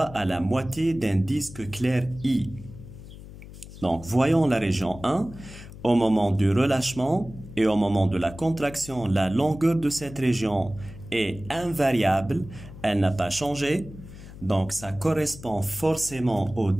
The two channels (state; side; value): noise; left; hum, 16 dB below the sound